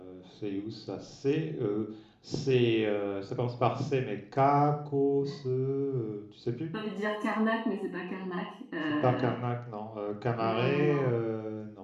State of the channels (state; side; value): identical; both; correlation 1.00